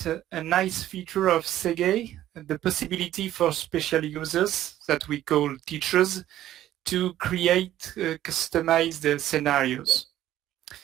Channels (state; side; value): quieter; left; 13.0 dB